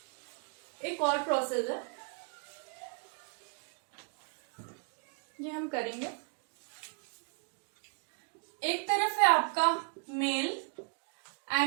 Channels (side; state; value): left; quieter; 39.0 dB